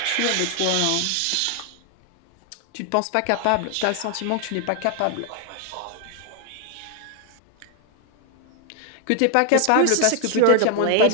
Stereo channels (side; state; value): both; different; correlation 0.00